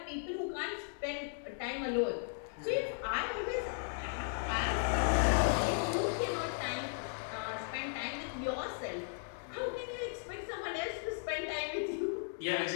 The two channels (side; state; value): right; silent; digital silence